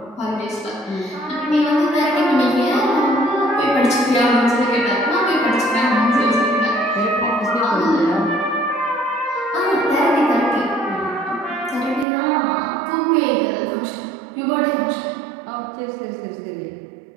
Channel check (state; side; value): drops out; left; at 12.1 s